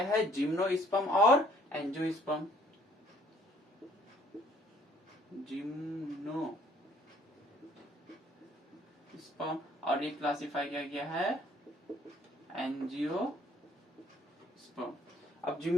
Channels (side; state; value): both; normal; correlation 0.60